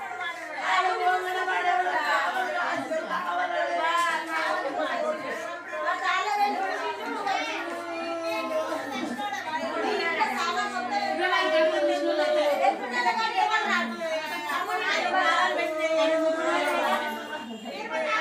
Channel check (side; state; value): both; identical; correlation 1.00